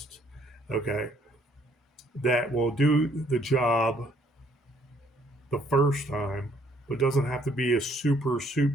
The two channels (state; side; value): normal; both; correlation 0.65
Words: okay, that will do the job the first time, but doesn't have to be a super